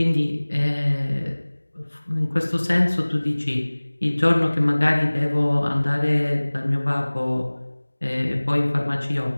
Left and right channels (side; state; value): both; inverted; correlation -1.00